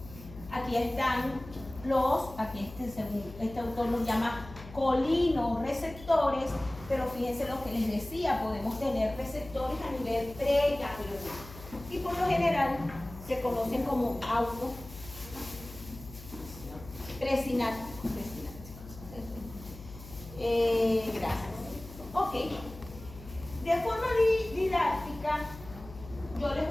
Aquí están este autor los llama colinoreceptores, pero fíjense lo que les decía, podemos tener receptores a nivel preganglionar. Y por lo general se conocen como presinápticos. Gracias. Ok. De forma didáctica, yo les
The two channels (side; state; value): left; noise; hum, 15 dB below the sound